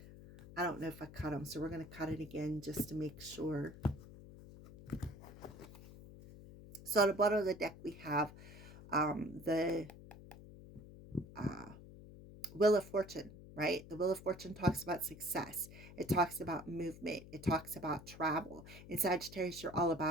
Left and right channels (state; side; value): noise; left; hum, 16 dB below the sound